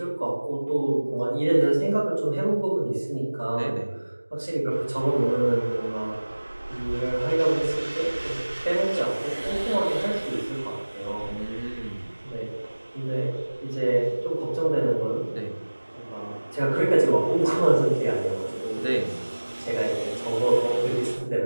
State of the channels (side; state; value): both; inverted; correlation -1.00